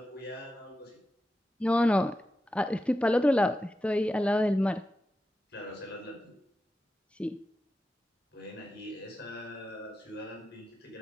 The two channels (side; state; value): both; normal; correlation 0.91